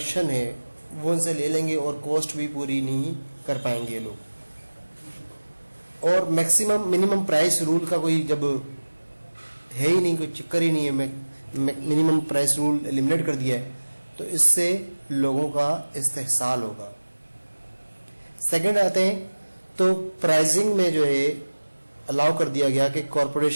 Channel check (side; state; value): both; inverted; correlation -1.00